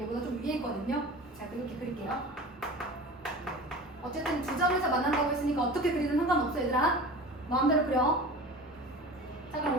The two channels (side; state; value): both; normal; correlation 0.36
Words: 얘보다 좀 위에 있거든요. 자, 그렇게 그릴게요. 어쨌든 두 점에서 만난다고 했으니까 어떻게 그리든 상관없어 얘들아. 마음대로 그려. 자, 그럼